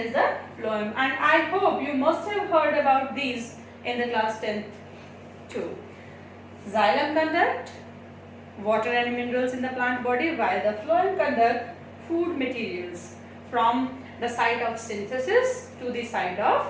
the phloem. And I hope you must have heard about these in the class 10th too. Xylem conduct water and minerals in the plant body, while the phloem conduct food materials from the site of synthesis to the site of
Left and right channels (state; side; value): identical; both; correlation 1.00